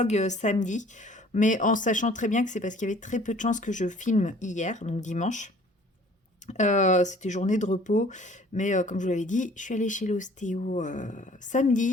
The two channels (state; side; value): normal; both; correlation 0.53